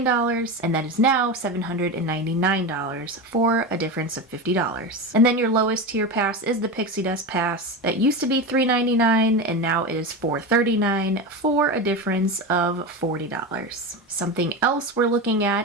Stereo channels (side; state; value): both; normal; correlation 0.21